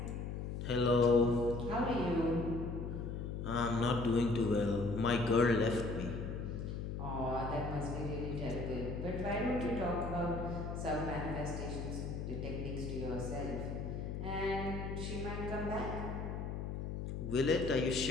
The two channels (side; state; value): left; noise; hum, 4 dB below the sound